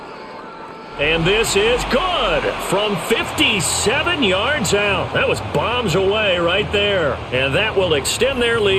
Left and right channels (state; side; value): identical; both; correlation 1.00